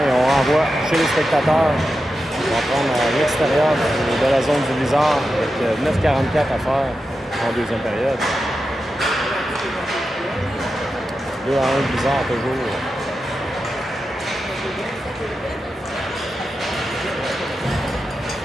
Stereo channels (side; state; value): both; normal; correlation 0.90